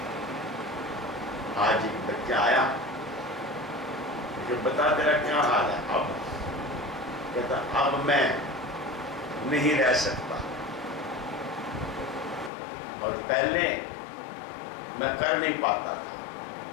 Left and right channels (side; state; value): right; drops out; at 12.5 s